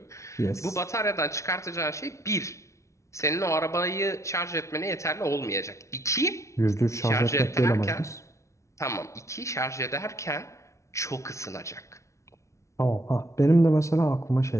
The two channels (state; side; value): late; right; 0.14 ms